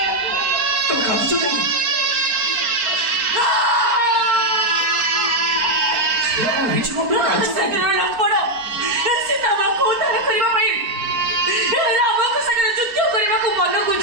ତମେ କାନ୍ଦୁଛ କଣ? ଶ୍ରେୟା କଣ ହେଇଛି କଣ? ସୀତା ମାଙ୍କୁ ଉଦ୍ଧାର କରିବା ପାଇଁ ରାମଙ୍କ ସାଙ୍ଗରେ ଯୁଦ୍ଧ କରିବାକୁ ମନକୁ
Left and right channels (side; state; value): left; late; 4.4 ms